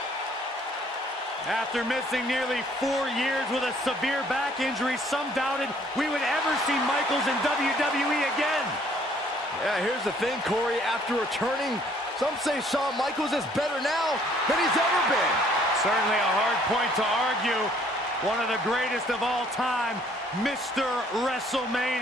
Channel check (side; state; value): both; normal; correlation 0.61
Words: After missing nearly 4 years with a severe back injury, some doubted we would ever see Michaels in WWE again. Yeah, here's the thing, Corey. After returning, some say Shawn Michaels is better now than he's ever been. Certainly a hard point to argue. One of the greatest of all time, Mr.